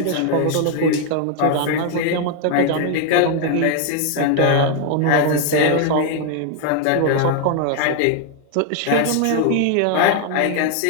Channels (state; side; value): different; both; correlation 0.00